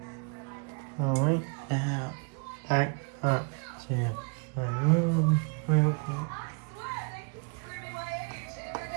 Alright, now back up to my room real quick.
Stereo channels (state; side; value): quieter; left; 35.8 dB